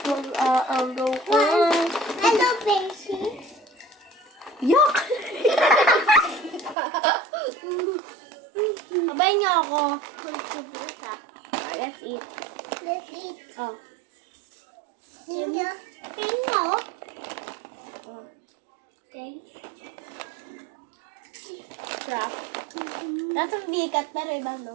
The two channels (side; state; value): left; drops out; at 6.8 s